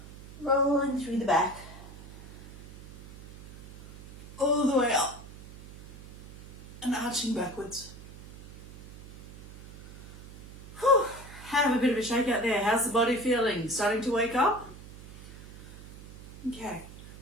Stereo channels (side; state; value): right; noise; hum, 17 dB below the sound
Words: rolling through the back, all the way up, and arching backwards. Whew. Have a bit of a shake out there. How's the body feeling? Starting to wake up? Okay,